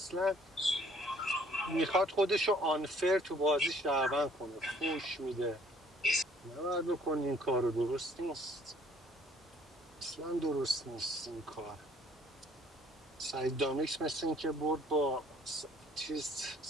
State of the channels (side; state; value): both; normal; correlation 0.59